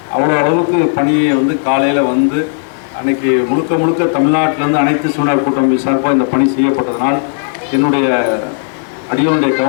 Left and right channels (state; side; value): silent; right; digital silence